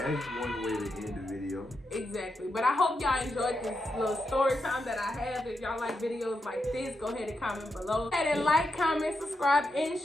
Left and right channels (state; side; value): normal; both; correlation 0.85